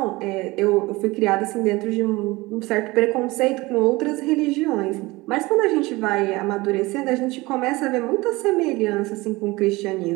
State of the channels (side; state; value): left; quieter; 21.7 dB